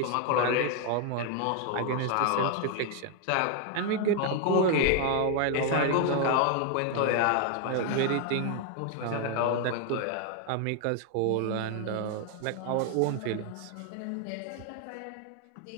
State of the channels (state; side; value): different; both; correlation 0.00